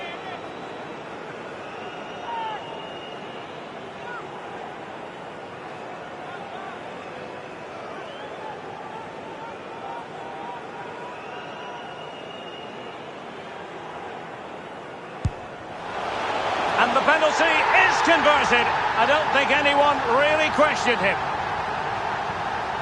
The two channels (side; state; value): both; identical; correlation 1.00